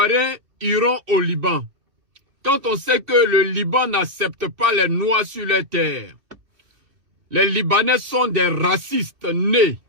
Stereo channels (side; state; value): left; late; 2.4 ms